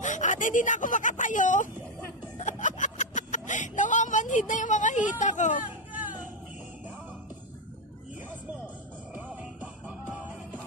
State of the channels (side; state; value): both; normal; correlation 0.04